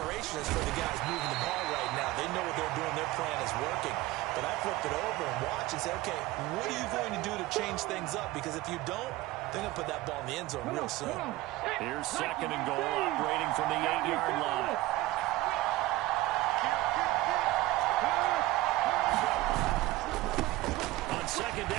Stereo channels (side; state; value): left; quieter; 17.6 dB